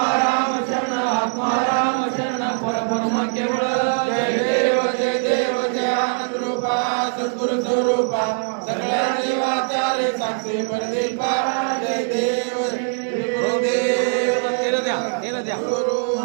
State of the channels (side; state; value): left; silent; digital silence